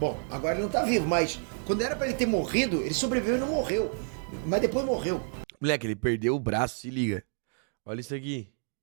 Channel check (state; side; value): silent; left; 58 dB below the other